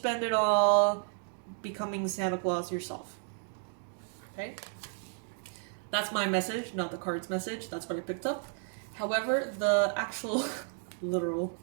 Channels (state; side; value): silent; left; 56 dB below the other